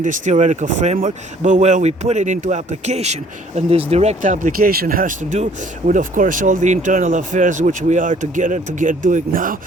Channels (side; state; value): both; normal; correlation 0.58